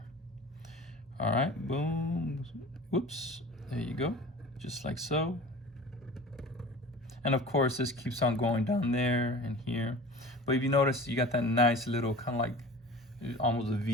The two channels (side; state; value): both; normal; correlation 0.39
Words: All right, boom, whoops, there you go, just like so. And of course, this keeps on going down there and here. But if you notice, you got that nice little kind of like almost a